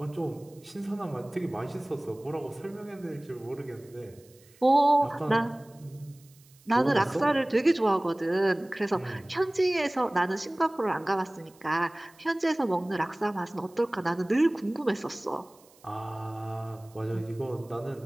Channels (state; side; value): noise; right; hiss, 28 dB below the sound